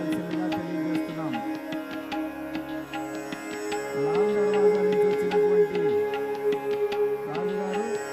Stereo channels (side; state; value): both; identical; correlation 1.00